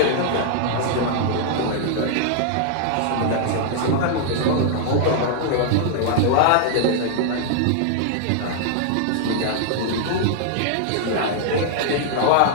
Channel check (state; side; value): different; both; correlation 0.00